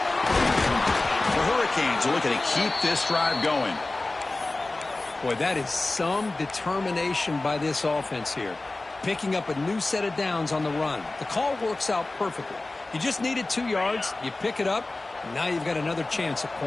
The Hurricanes are looking to keep this drive going. Boy, that is some determination by this offense here. Picking up a new set of downs on the run. The call works out perfectly. You just needed 2 yards. You pick it up. And now you've got another chance at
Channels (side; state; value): right; quieter; 3.1 dB